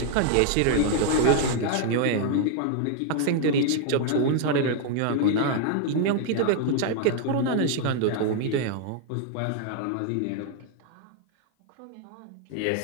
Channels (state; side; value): different; both; correlation 0.00